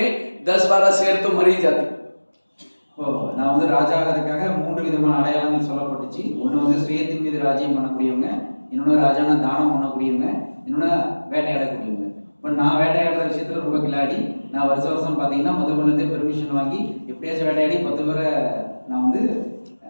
10-12 शेर तो मर ही जाते। நான் வந்து ராஜா ஆகிறதுக்காக 3 விதமான அடையாளங்கள் சொல்லப்பட்டுச்சு. ஒன்று வந்து சுயத்தின் மீது ராஜ்யம் பண்ணக்கூடியவங்க, இன்னொன்று ராஜான தானம் பண்ணக்கூடியவங்க, இன்னொன்று வேட்டையாடக்கூடியவங்க. இப்போ நான் வேட்டையாடுற விஷயத்துல ரொம்ப கிளாடி. நான் வருஷம் பார்த்தீங்கன்னா மதுபனத்தை பெர்மிஷன் வாங்கி எப்படியாச்சும் வேட்டையாடி 10 பேரை நான் வந்து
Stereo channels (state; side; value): inverted; both; correlation -1.00